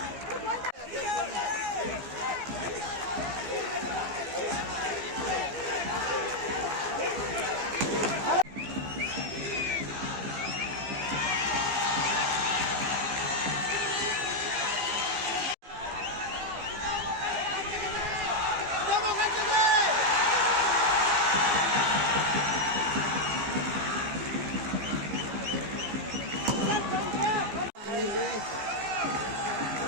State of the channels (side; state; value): left; late; 15 ms